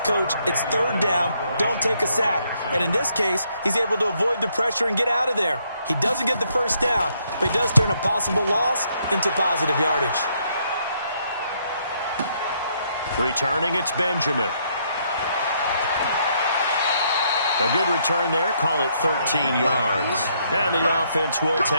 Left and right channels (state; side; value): inverted; both; correlation -0.72